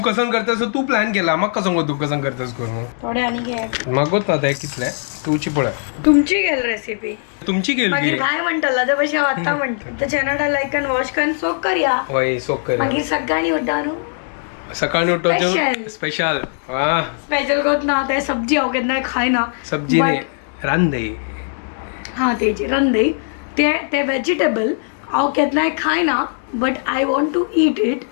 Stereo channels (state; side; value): silent; right; digital silence